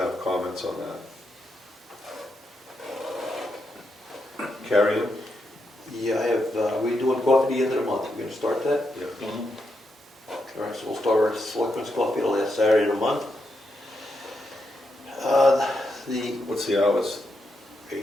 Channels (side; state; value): both; normal; correlation 0.83